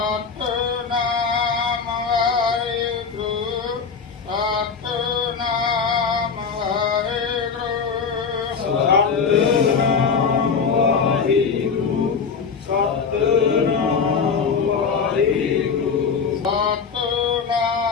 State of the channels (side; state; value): right; quieter; 5.8 dB